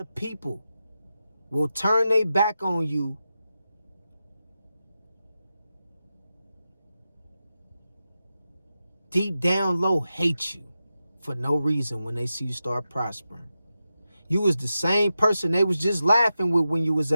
people will turn their back on you deep down low, hate you for no reason when they see you start prospering. You was the same person they was just laughing with when you was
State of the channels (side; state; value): both; inverted; correlation -0.91